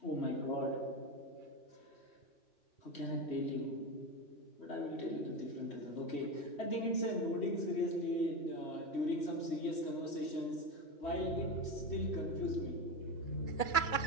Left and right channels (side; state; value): right; late; 3.1 ms